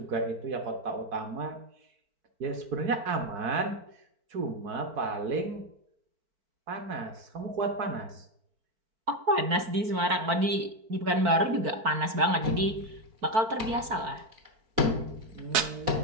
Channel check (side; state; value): left; late; 4.5 ms